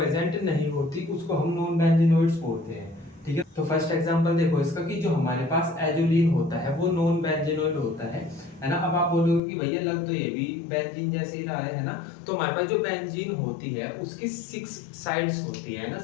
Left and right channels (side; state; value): right; drops out; at 9.4 s